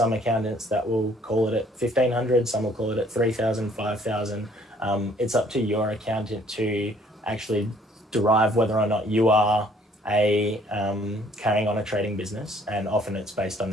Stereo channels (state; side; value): normal; both; correlation 0.60